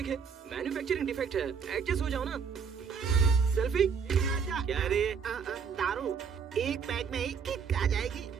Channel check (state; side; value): quieter; left; 6.3 dB